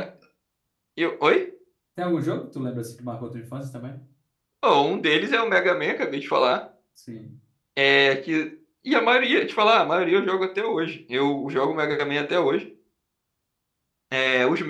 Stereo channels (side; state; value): both; identical; correlation 1.00